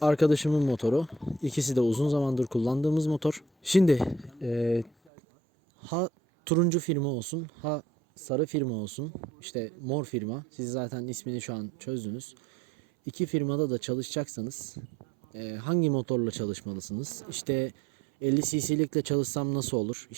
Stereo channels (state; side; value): drops out; left; at 4.9 s